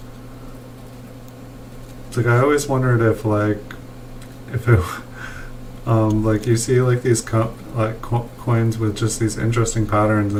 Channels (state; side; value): identical; both; correlation 1.00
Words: It's like I always wondered if it like you see like these coins with just these interesting patterns,